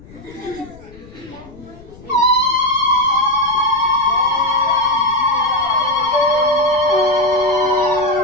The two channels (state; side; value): noise; left; rumble, 21 dB below the sound